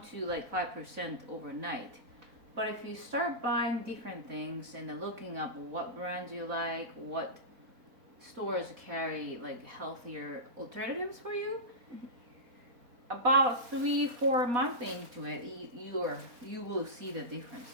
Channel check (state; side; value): late; left; 4.1 ms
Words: to like 5% overnight. But if you start buying different things and then looking up what brands you like, what stores carry like healthier alternatives for you, about 3-4 months into it, you will see the difference.